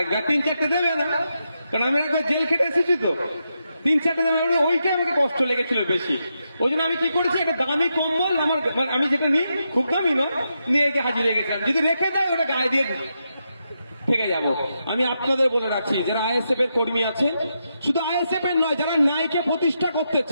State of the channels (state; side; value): inverted; both; correlation -0.84